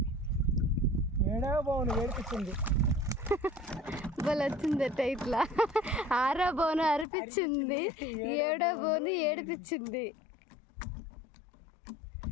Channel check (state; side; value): drops out; right; at 7.1 s